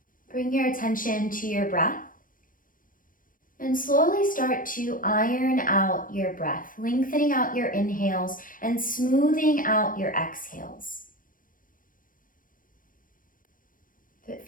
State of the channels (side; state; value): right; late; 0.40 ms